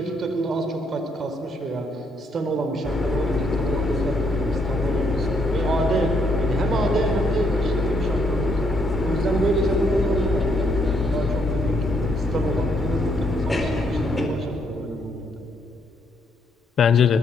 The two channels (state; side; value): normal; both; correlation 0.73